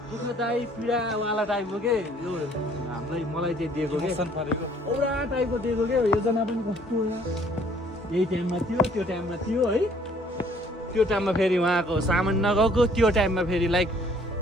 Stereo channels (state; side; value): normal; both; correlation 0.59